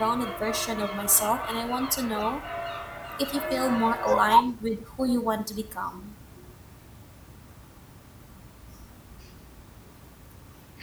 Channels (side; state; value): both; identical; correlation 1.00